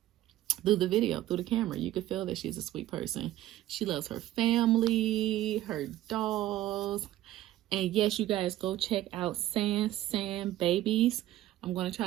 video, through the camera. You can feel that she's a sweet person. She loves her family, her dolls. And yes, you guys go check out San Babies. I'm going to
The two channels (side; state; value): left; quieter; 14.4 dB